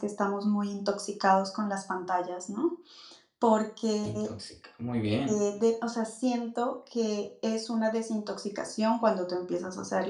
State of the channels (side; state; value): both; identical; correlation 1.00